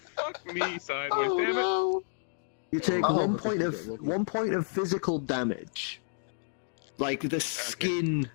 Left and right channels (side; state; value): right; silent; digital silence